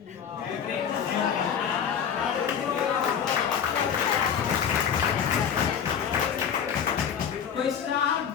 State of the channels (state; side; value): quieter; right; 7.9 dB